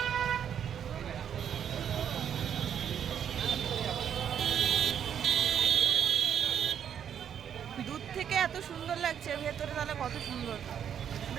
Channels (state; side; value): quieter; left; 8.7 dB